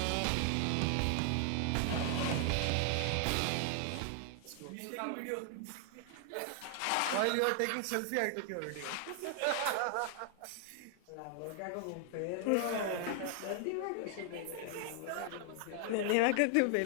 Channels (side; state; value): both; different; correlation 0.00